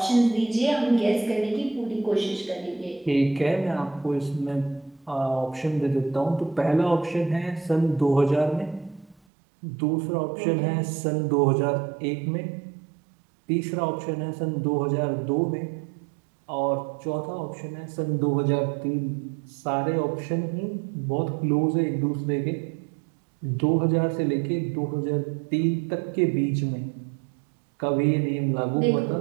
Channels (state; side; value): drops out; left; at 9.2 s